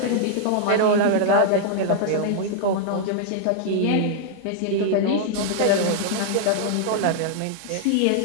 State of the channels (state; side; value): different; both; correlation -0.01